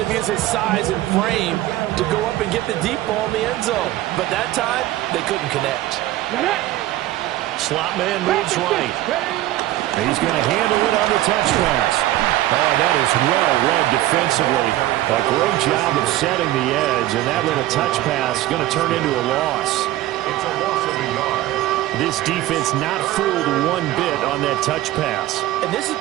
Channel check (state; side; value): quieter; left; 15.2 dB